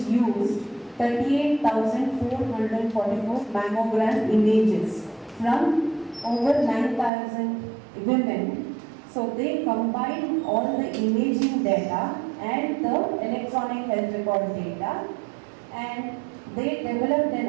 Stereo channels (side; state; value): left; drops out; at 7.1 s